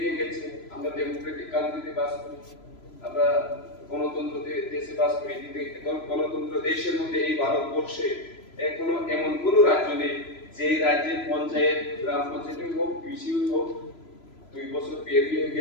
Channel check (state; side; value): late; right; 3.0 ms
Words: গেছে। আমরা ডেমোক্রেটিক কান্ট্রিতে বাস করি, আমরা গণতন্ত্র দেশে বাস করি, কিন্তু গণতন্ত্র দেশের মধ্যে এই ভারতবর্ষে এখনো এমন কোন রাজ্য নেই যে রাজ্যের পঞ্চায়েত, গ্রাম পঞ্চায়েত হোক, বিসি হোক, 2 বছর পেরিয়ে